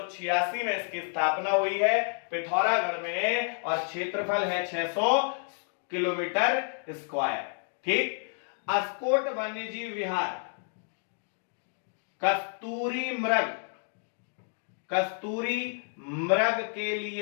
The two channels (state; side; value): silent; right; 58 dB below the other